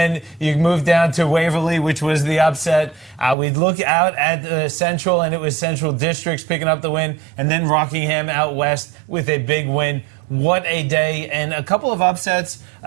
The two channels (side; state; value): left; drops out; at 3.4 s